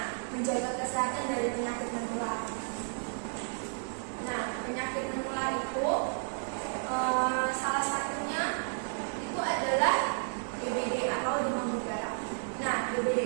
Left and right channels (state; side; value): silent; left; digital silence